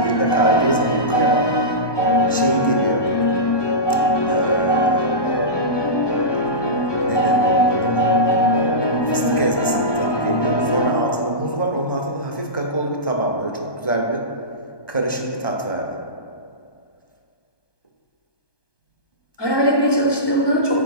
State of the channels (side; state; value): right; late; 1.2 ms